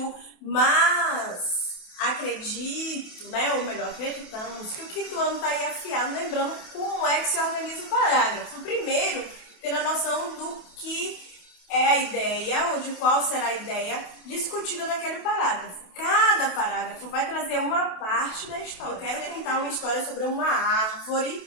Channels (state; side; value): late; right; 28 ms